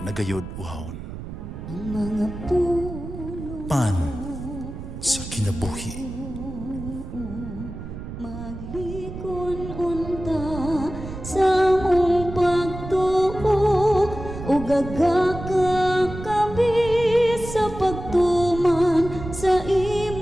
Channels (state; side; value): noise; right; rumble, 10 dB below the sound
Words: nagayod uhawon." Pan sa kinabuhi. Gagakakabi sa pagtuman sa